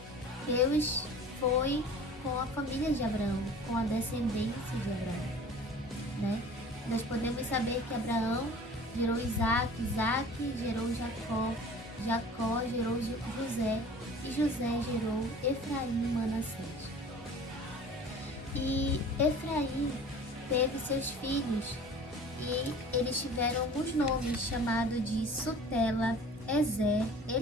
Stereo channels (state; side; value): normal; both; correlation 0.44